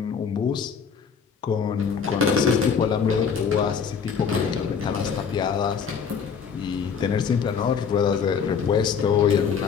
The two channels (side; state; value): right; quieter; 6.5 dB